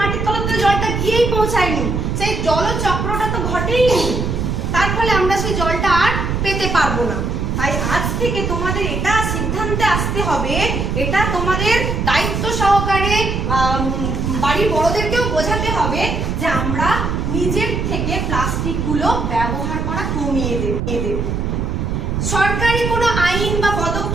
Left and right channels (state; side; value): noise; right; rumble, 1 dB below the sound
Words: মাটির তলাতে জলটা গিয়েই পৌঁছায়নি, সেই জলচক্রটা তো ঘটেইনি। তার ফলে আমরা সেই জলটা আর পেতে পারবো না। তাই আজ থেকে তোমাদের এটা সিদ্ধান্তে আসতে হবে, এটা তোমাদের দায়িত্ব সহকারে বাড়ির বড়দেরকেও বোঝাতে হবে যে আমরা নিজের থেকে প্লাস্টিক গুলো ব্যবহার করা কমিয়ে দেব। সরকারি কোনো আইন বা